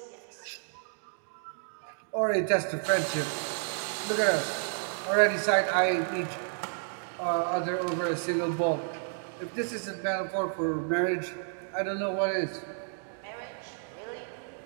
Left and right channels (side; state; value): left; silent; digital silence